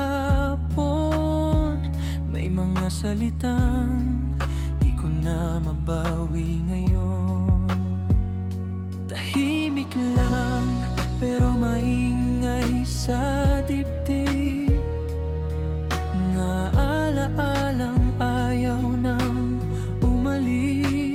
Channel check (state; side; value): identical; both; correlation 1.00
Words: May mga salitang di ko na mabawi ngayon. Tahimik lang pero maingay sa dibdib, nga alaalang ayaw nang